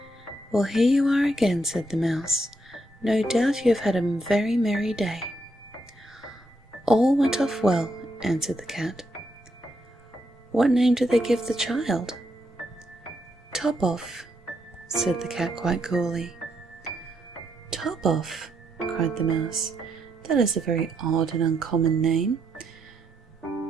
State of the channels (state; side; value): normal; both; correlation 0.78